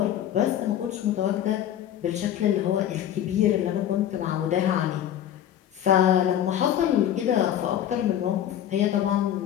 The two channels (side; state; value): right; quieter; 10.8 dB